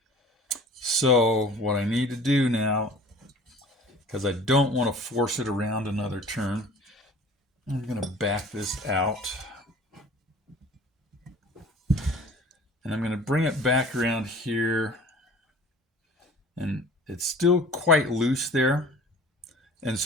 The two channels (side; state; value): both; normal; correlation 0.45